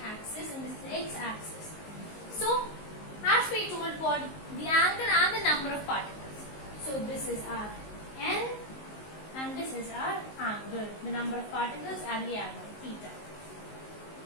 and this is x-axis. So as we told, for the angle and the number of particles. So this is our n and this is our angle, the number of particles and the angle theta.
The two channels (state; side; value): late; right; 19 ms